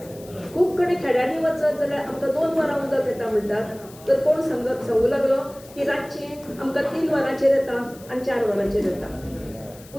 खूब कडेन खेड्यांनी वचत जाल्यार आमकां 2 वरां उदक येता म्हणटात, तर कोण सांगू लागलो की रातची आमकां 3 वरांचेर येता आनी 4 वरांचेर येता.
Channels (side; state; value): left; noise; hiss, 22 dB below the sound